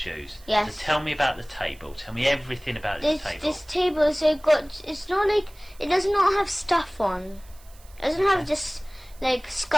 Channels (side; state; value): right; noise; hiss, 26 dB below the sound